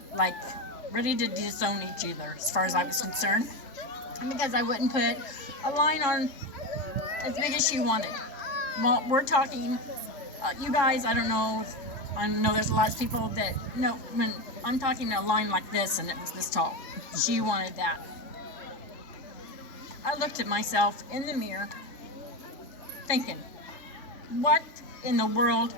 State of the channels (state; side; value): late; right; 3.5 ms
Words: Like, ready to disown each other, as far as I was concerned. Because I wouldn't put a line on as big as she wanted. Well, we're talking, you guys, I don't know there's a lot of people that, no, when I'm talking a line like this and it was this tall. She wanted that. I looked at myself in the mirror thinking, what in the world